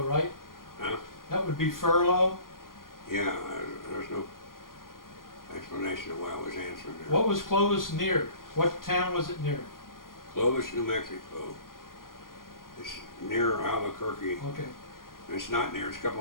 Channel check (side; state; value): right; late; 0.91 ms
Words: right? Huh? That would be furlough? Yeah, there's no explanation of why I was answering there. What was Clovis near? What town was it near? Clovis, New Mexico. It's near Albuquerque. Okay. It's not near, it's a couple